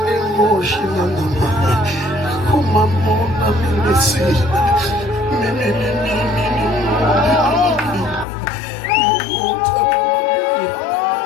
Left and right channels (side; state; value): right; drops out; at 8.2 s